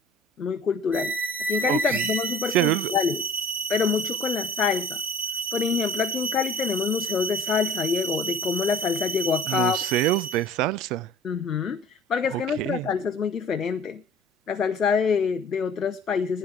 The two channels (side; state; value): both; normal; correlation 0.46